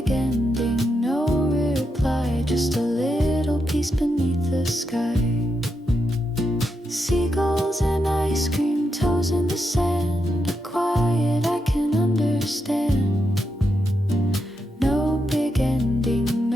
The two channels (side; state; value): both; normal; correlation 0.84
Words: ending, no reply, just a little peace beneath the sky. Seagulls and ice cream, toes in the sand, a quiet I can understand. No big ending,